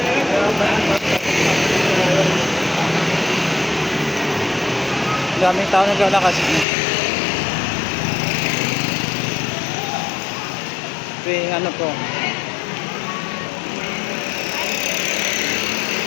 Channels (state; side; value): drops out; right; at 6.7 s